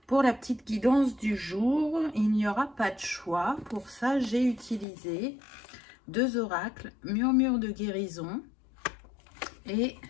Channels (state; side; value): drops out; right; at 4.9 s